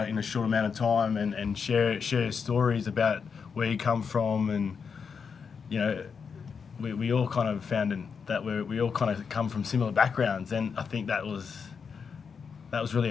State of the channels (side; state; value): right; quieter; 6.0 dB